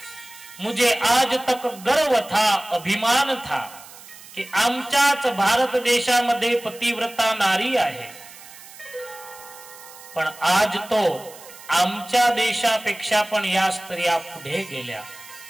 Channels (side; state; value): right; noise; hiss, 18 dB below the sound